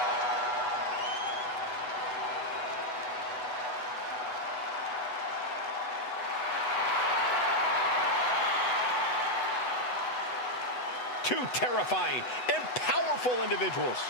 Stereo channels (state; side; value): late; right; 8.1 ms